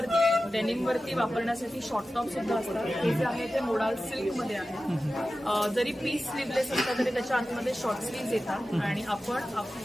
डेनिमवरती वापरण्यासाठी शॉर्ट टॉप सुद्धा असतात. हे जे आहे ते मोडाल सिल्कमध्ये आहे. जरी पीस स्लीवलेस असतात तरी त्याच्या आतमध्ये शॉर्ट स्लीव्ज येतात आणि आपण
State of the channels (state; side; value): normal; both; correlation 0.94